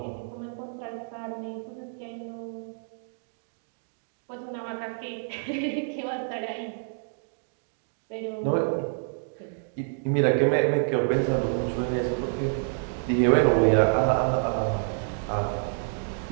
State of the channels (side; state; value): left; silent; digital silence